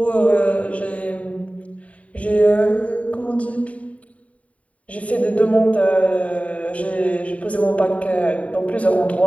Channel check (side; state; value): right; late; 0.067 ms